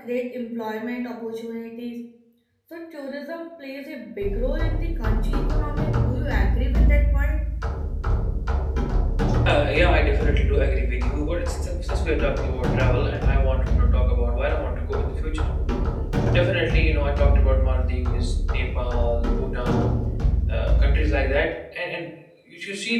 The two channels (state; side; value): identical; both; correlation 1.00